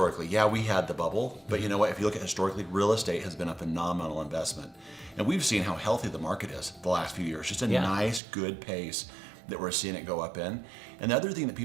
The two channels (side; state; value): left; drops out; at 8.2 s